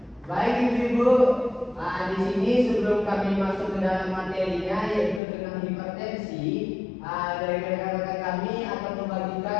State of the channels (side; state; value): right; drops out; at 5.2 s